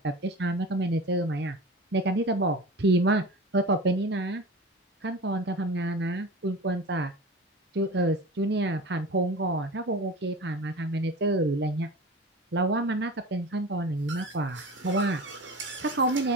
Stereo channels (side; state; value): both; normal; correlation 0.34